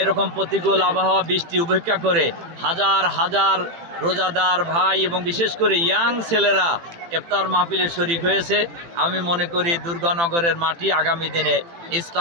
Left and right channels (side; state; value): left; late; 18 ms